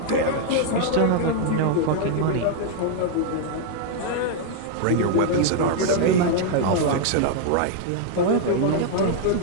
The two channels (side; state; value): both; different; correlation 0.00